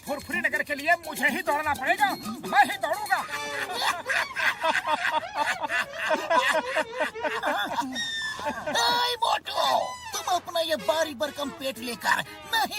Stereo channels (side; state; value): both; identical; correlation 1.00